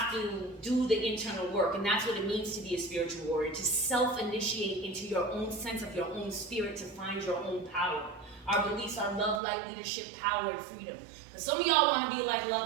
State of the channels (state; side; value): drops out; left; at 9.4 s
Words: to do the internal work, and that's what it means to be a spiritual warrior, to self-initiate into your own sense of your own spirit, to find your own power. Our beliefs are love, light, leadership, power, and freedom. But some of y'all want to be like